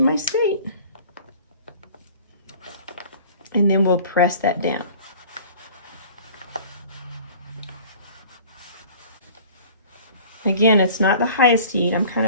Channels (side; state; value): both; inverted; correlation -0.47